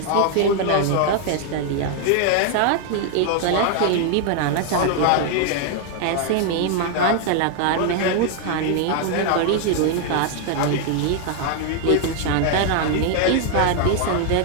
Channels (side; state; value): both; different; correlation 0.00